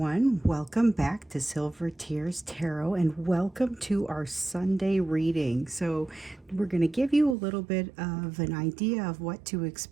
Welcome back to Silver Tears Tarot and welcome to our Sunday reading. So, we're going to give you a little bit of an idea of what to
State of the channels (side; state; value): left; drops out; at 7.4 s